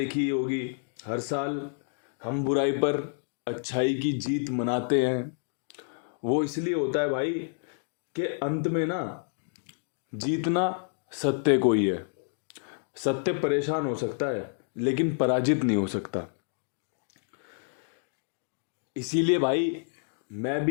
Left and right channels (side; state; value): right; silent; digital silence